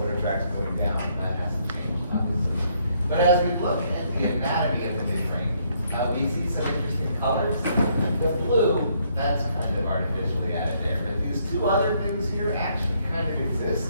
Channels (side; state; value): both; inverted; correlation -0.70